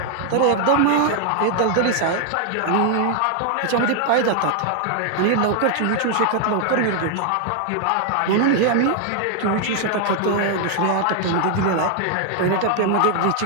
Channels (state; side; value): different; both; correlation 0.00